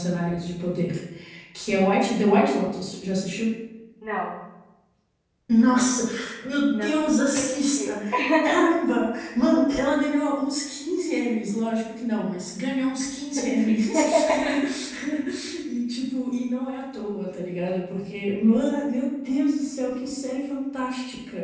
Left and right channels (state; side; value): identical; both; correlation 1.00